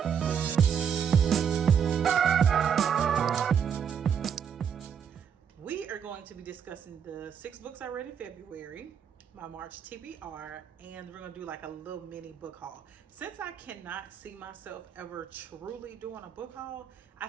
We are going to be discussing the 6 books I read in February, my March TBR, and we're going to do like a little mini book haul. Since I cannot see myself ever truly doing a book haul, I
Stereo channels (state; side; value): quieter; left; 7.6 dB